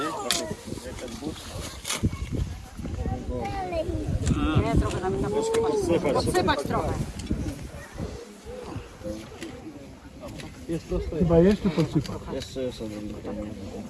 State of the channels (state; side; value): identical; both; correlation 1.00